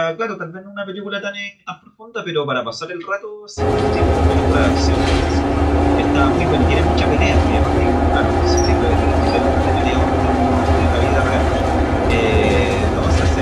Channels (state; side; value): identical; both; correlation 1.00